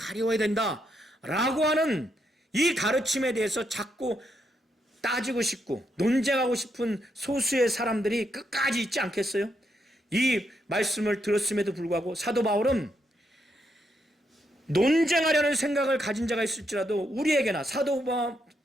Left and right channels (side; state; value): both; normal; correlation 0.79